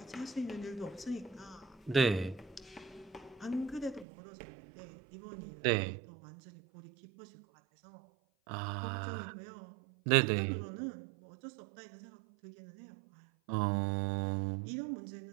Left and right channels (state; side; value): drops out; left; at 4.0 s